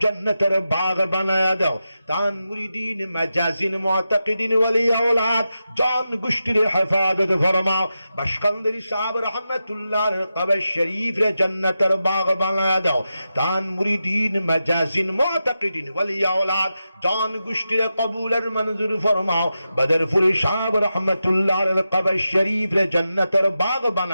জান্নাতের বাগ বানায়া দাও। তান মুরিদিন মাজাজিন মুতাকিদিন ওয়ালি আওলাদ জান গোষ্ঠীর হেফাজত ফরমাও। বাশকান্দারি সাহেব রহমাতুল্লাহর কবর শরীফ রে জান্নাতের বাগ বানায়া দাও। তান মুরিদিন মাজাজিন মুতাকিদিন ওয়ালি আওলাদ জান গোষ্ঠীর কবুলের মঞ্জুর ফরমাও। বদরপুরি সাহেব রহমাতুল্লাহর কবর শরীফ রে জান্নাতের বাগ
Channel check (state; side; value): inverted; both; correlation -0.90